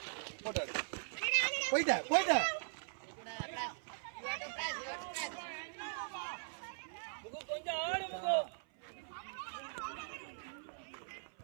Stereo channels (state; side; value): silent; left; 51 dB below the other